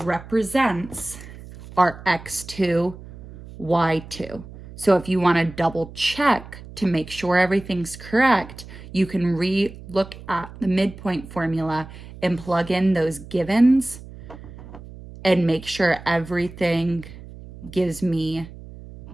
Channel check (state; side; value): noise; right; hum, 16 dB below the sound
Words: represents our x2, y2. So if you want to double check to make sure everything's correct, you can re-look at the midpoint formula and plug in those givens and make sure everything gives me,